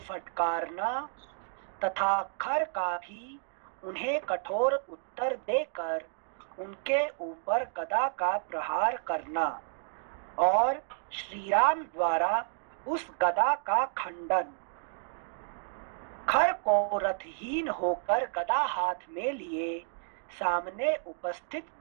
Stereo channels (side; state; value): left; silent; digital silence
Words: तथा खर का भी उन्हें कठोर उत्तर देकर उनके ऊपर गदा का प्रहार करना और श्रीराम द्वारा उस गदा का खंडन। खर को रथहीन होकर गदा हाथ में लिए सामने उपस्थित